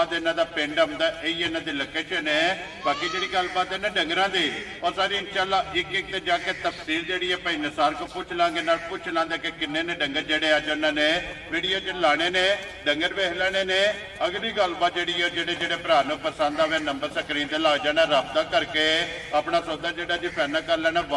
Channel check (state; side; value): identical; both; correlation 1.00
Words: इन्हों का पिंड आता, यही इन्हों की लोकेशन है। बाकी जी गलबात है ना डंगरां दी और सारी इंशाअल्लाह एक एक ते जाके तफसील जी है भाई नसार को पूछ लांगे ना पूछ लांगे कि किन्ने ने डंगर जड़े अज उन्होंने वीडियो च लाने ने डंगर वेख लेने ने। अगली गलबात जी है जेडे भरा नूं पसंद आवे नंबर स्क्रीन ते ला जाना, रब्ता करके अपना सौदा जो जी फाइनल कर लेना।